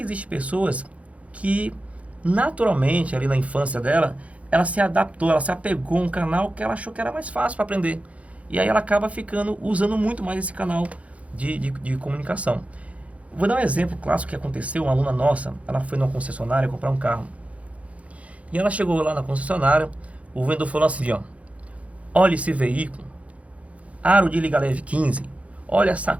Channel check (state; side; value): late; left; 0.065 ms